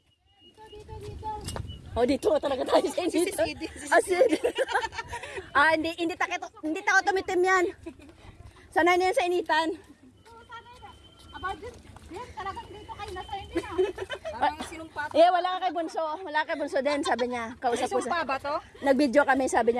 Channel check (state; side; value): identical; both; correlation 1.00